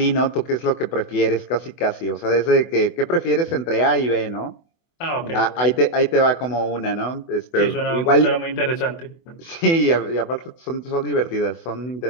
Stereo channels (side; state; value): right; late; 24 ms